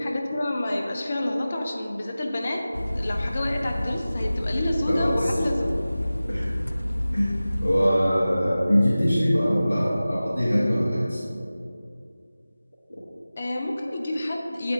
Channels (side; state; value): both; inverted; correlation -0.97